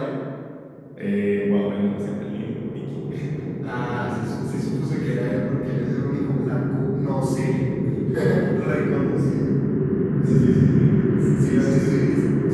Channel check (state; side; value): identical; both; correlation 1.00